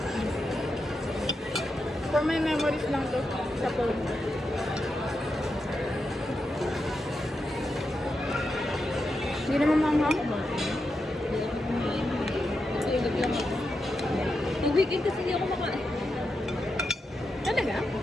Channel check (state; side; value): normal; both; correlation 0.87